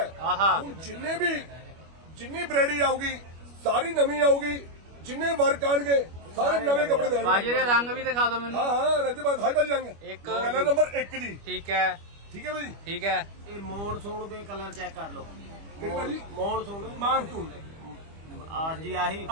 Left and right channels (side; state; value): left; late; 25 ms